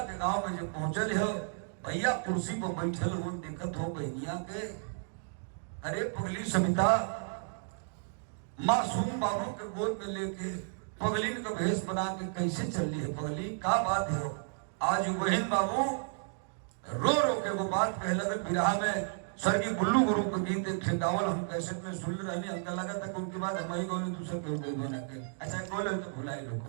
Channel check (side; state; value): left; silent; digital silence